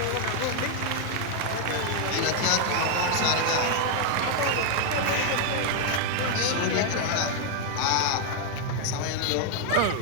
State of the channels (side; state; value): both; different; correlation 0.00